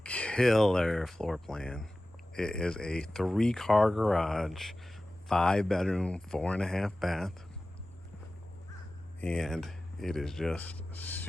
killer floor plan. It is a 3-car garage, 5-bedroom, 4.5 bath, and it is just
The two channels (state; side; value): normal; both; correlation 0.96